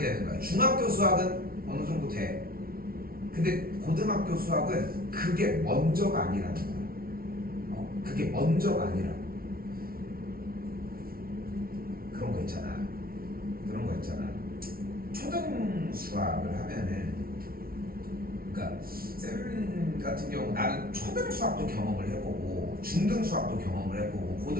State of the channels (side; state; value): left; late; 0.43 ms